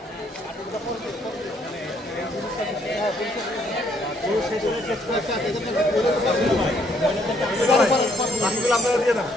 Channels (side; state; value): both; normal; correlation 0.69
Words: আপনারা দিয়ে না